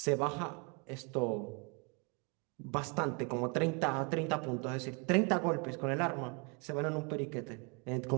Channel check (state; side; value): quieter; left; 33.1 dB